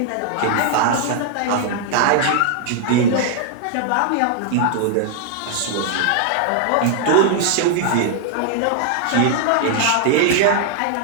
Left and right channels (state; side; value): different; both; correlation 0.00